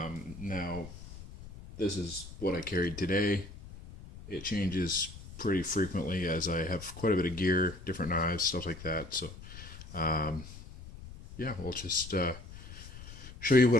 this is what I carried today. It changes pretty frequently as I have quite a bit of gear, different knives, stuff like that. So, um, yeah, we'll just show you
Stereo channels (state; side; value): noise; left; rumble, 14 dB below the sound